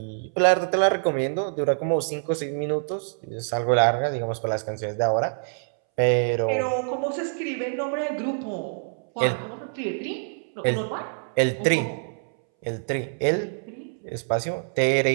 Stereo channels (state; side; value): silent; left; 61 dB below the other